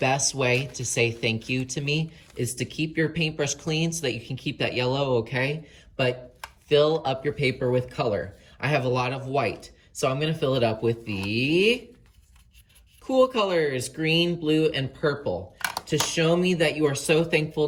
way to say thank you to me is to keep your paintbrush clean so that you can keep that yellow, okay? But fill up your paper with color. I have a lot of white, so I'm gonna fill it up with the cool colors, green, blue, and purple. To show me that you are so thankful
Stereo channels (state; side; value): identical; both; correlation 1.00